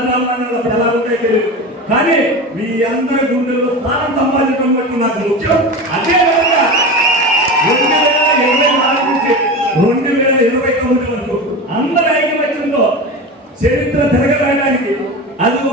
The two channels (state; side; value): normal; both; correlation 0.27